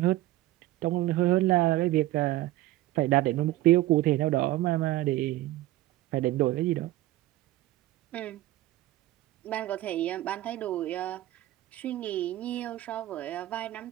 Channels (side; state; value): left; quieter; 16.0 dB